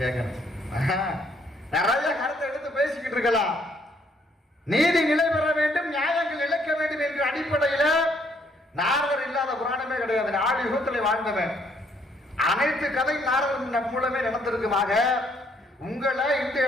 நிறைய கருத்தை எடுத்து பேசிக்கிட்டு இருக்கலாம். நீதி நிலை பெற வேண்டும், நியாயங்கள் இழைக்க வேண்டும் என்ற அடிப்படையில நாரதர் இல்லாத புராணமே கிடையாது. ஆடி யுகத்திலே வாழ்ந்தவன். அனைத்து கதை நாரதன் மூலமே நடந்திருக்குமாக. உங்களை இந்த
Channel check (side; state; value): both; normal; correlation 0.68